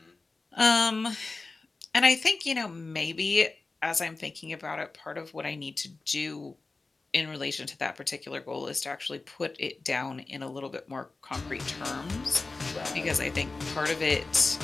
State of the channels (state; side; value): quieter; right; 3.7 dB